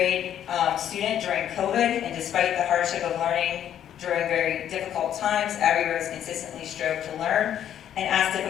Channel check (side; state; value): right; quieter; 10.3 dB